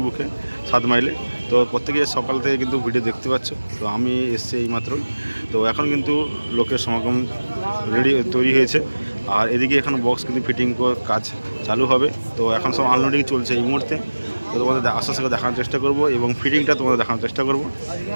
বুকে 7 মাইলে। তো প্রত্যেকে সকাল থেকে কিন্তু ভিডিও দেখতে পাচ্ছ। তো আমি এসেছি এইমাত্রই। তো এখন কিন্তু লোকের সমাগম তৈরি হয়েছে। আর এদিকে এখন বক্স কিন্তু ফিটিং কাজ চালু হবে। তো এখন সব আনলোডিং চলছে এই মুহূর্তে। তো তোমাদের আস্তে আস্তে দেখানোর চেষ্টা করব এবং ফিটিংটা তোমাদের দেখানোর চেষ্টা করব।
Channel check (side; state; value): both; inverted; correlation -1.00